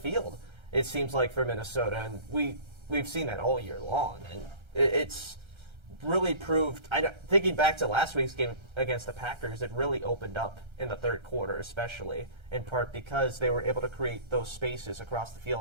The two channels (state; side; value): late; left; 1.3 ms